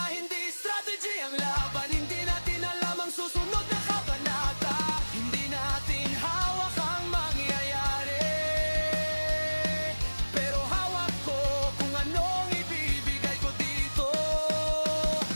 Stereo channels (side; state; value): both; inverted; correlation -1.00